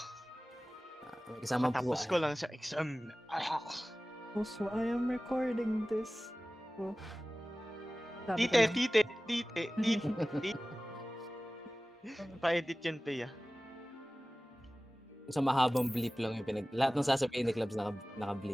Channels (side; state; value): both; normal; correlation 0.97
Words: May kasama po. Tapos ko lang sa exam. Also, I am recording this. Oh. Tite. Pa-edit yan, Pea. Sa mahabang bleep lang yung lahat ng sasabihin ni Clubs